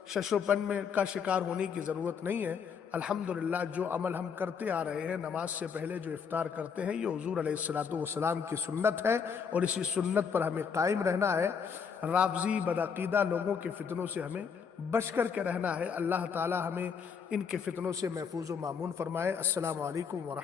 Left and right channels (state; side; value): quieter; right; 6.5 dB